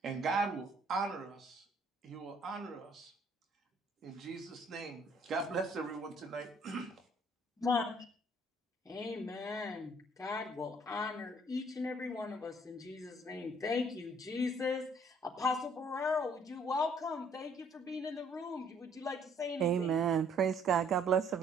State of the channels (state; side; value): normal; both; correlation 0.62